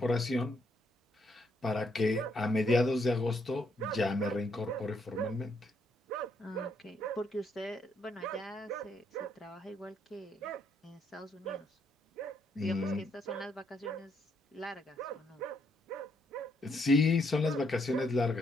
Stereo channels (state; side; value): normal; both; correlation 0.73